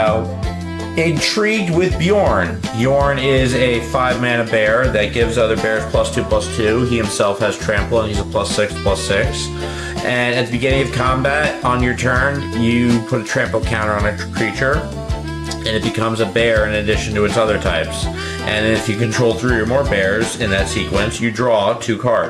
intrigued with Bjorn. Bjorn is a 5-mana bear that gives other bears +2/+2. He himself has trample and he's a +6/+6. And at the beginning of combat, on your turn, you put a trample counter on a creature and it becomes a bear in addition to its other types. And if you control 3 or more bears in that sequence, you draw 2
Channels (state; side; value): identical; both; correlation 1.00